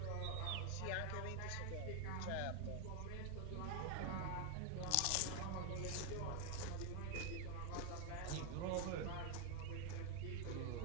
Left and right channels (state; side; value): different; both; correlation 0.01